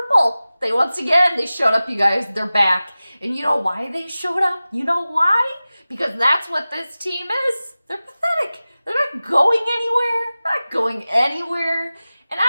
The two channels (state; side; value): inverted; both; correlation -0.97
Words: They showed up, you guys. They're back. And you know why they showed up? You know why? Because that's what this team is. They're pathetic. They're not going anywhere. And I'm